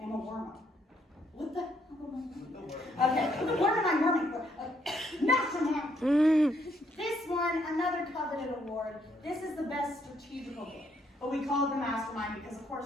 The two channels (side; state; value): both; normal; correlation 0.71